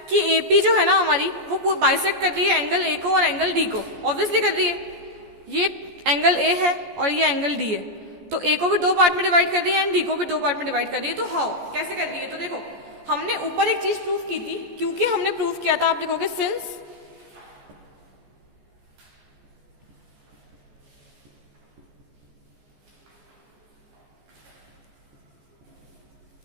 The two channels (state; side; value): late; left; 14 ms